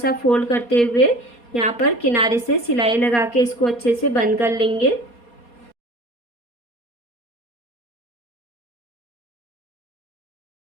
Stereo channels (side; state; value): right; late; 4.2 ms